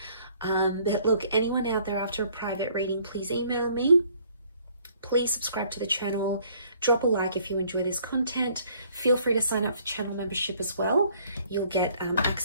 But look, anyone out there after a private reading, please email me. Please subscribe to the channel. Drop a like if you enjoy this content. Feel free to sign up for channel membership as well. You'll get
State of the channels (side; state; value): both; inverted; correlation -0.61